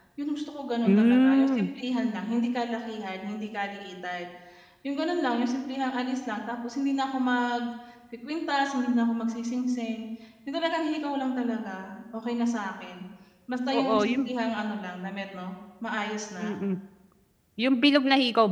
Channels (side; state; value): both; identical; correlation 1.00